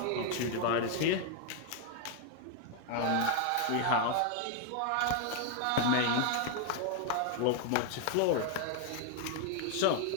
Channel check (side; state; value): both; different; correlation 0.00